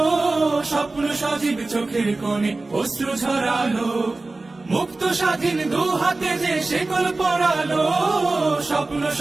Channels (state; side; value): quieter; left; 3.3 dB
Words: স্বপ্ন সজীব চোখের কোণে অশ্রু ঝরালো, মুক্ত স্বাধীন দু হাতে যে শেকল পরালো, স্বপ্ন